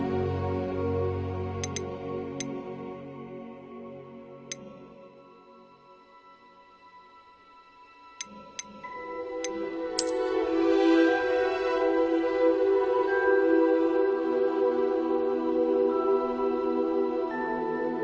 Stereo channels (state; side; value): identical; both; correlation 1.00